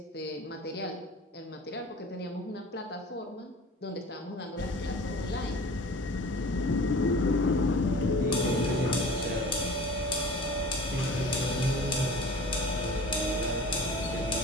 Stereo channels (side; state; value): both; normal; correlation 0.41